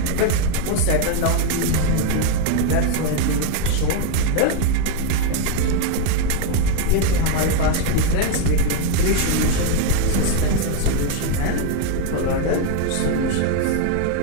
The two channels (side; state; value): both; different; correlation 0.01